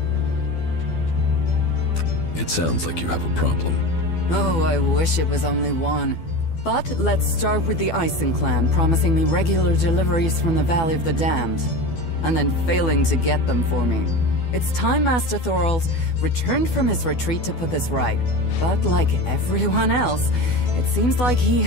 It sounds like you have a problem. Oh, I wish it was only one. But let's start with the Ison clan promising me regular deliveries from the Valley of the Damned, and then failing to get them for me. It's time Master Thorald returned from his retreat to put this right. But like everyone else, it seems like he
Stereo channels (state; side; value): late; right; 12 ms